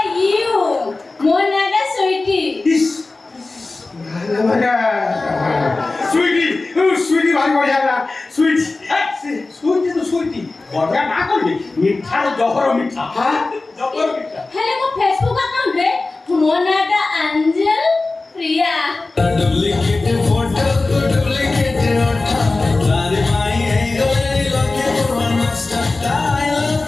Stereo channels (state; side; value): quieter; right; 3.4 dB